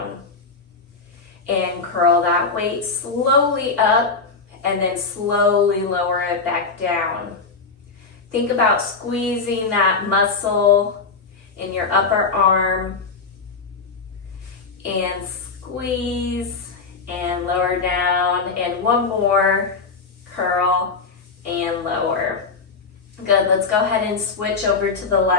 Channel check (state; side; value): quieter; right; 4.4 dB